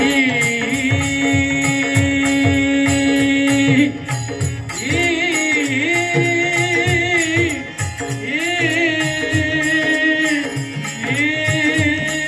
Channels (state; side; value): identical; both; correlation 1.00